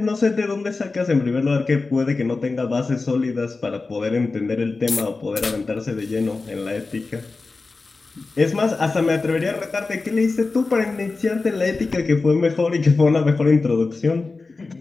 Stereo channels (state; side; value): quieter; right; 3.8 dB